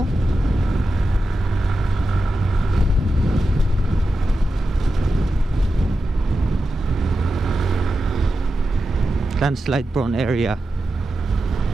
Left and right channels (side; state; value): both; normal; correlation 0.91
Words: oh. Landslide prone area.